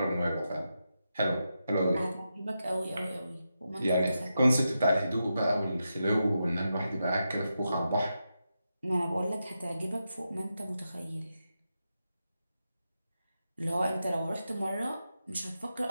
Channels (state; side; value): inverted; both; correlation -0.87